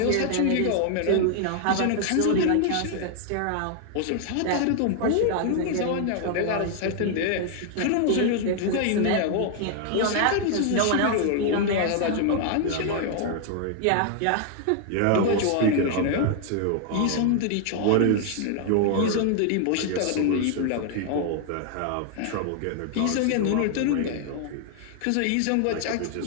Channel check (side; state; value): both; different; correlation 0.00